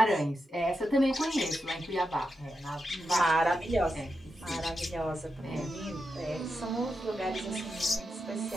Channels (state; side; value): normal; both; correlation 0.87